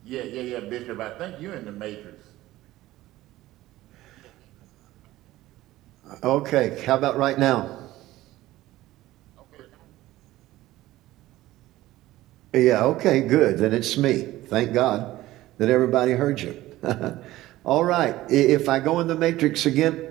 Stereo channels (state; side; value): quieter; left; 16.3 dB